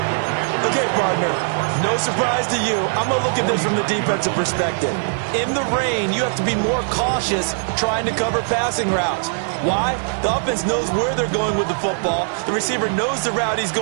Okay, partner, no surprise to you. I'm going to look at this from the defensive perspective. In the rain, you have to be more cautious trying to cover passing routes. Why? The offense knows where they're going with the football. The receiver knows the route he's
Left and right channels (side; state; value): left; silent; digital silence